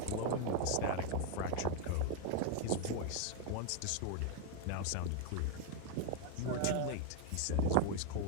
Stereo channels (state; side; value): different; both; correlation 0.01